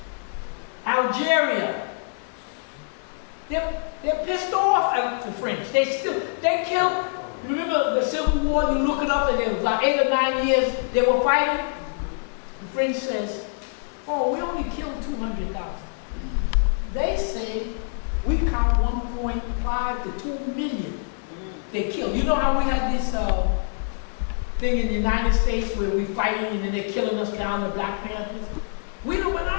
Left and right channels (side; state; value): right; silent; 62 dB below the other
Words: Algeria. They're pissed off at the French. They killed. Remember the Civil War? You look it up, and it was like 8 or 9 years they were fighting. The French says, we only killed 200,000. They say we count 1.5 to 2 million they killed. You know how we had this thing in the United States where we fighting and then they're killing us down, the Black Panthers?